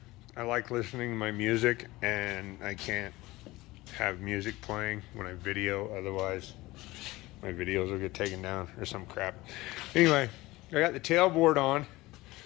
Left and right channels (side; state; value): right; quieter; 19.5 dB